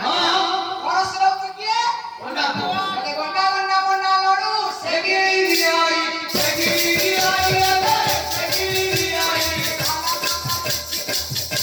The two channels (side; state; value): both; identical; correlation 1.00